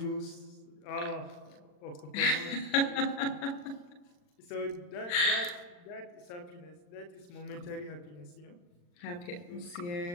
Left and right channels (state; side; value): late; right; 40 ms